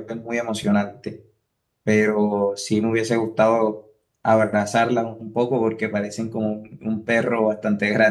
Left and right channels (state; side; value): identical; both; correlation 1.00